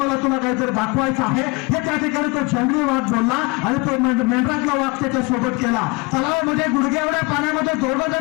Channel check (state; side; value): quieter; right; 26.7 dB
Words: मला तुला काहीतरी दाखवायचं आहे. हे त्या ठिकाणी तो जंगली वाघ बोलला आणि तो मेंढरातला वाघ त्याच्या सोबत केला. तलावामध्ये गुडघे एवढ्या पाण्यामध्ये दोघं